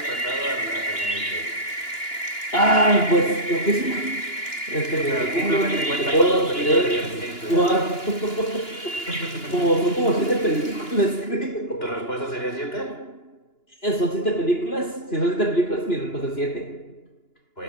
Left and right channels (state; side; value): late; right; 2.9 ms